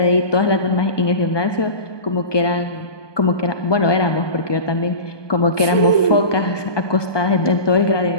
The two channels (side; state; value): right; late; 1.2 ms